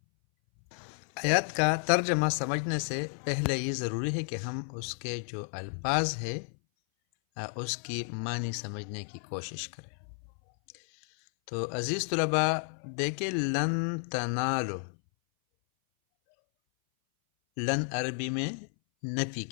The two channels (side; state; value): right; silent; 57 dB below the other